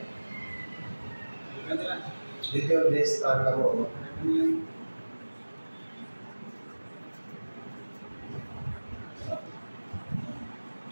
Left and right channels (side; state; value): both; inverted; correlation -1.00